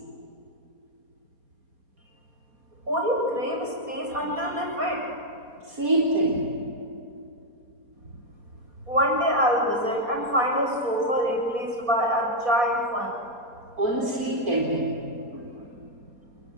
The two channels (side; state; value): left; late; 4.2 ms